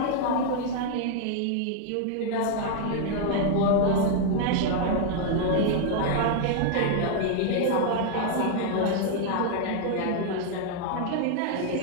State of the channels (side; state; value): both; different; correlation 0.00